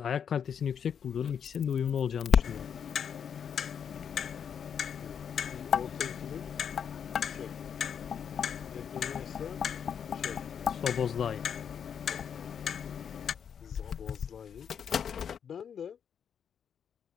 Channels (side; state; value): right; quieter; 7.7 dB